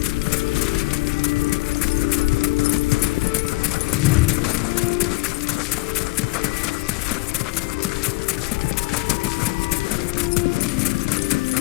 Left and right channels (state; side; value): quieter; right; 22.9 dB